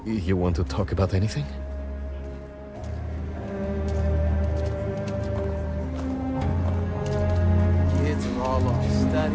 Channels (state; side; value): identical; both; correlation 1.00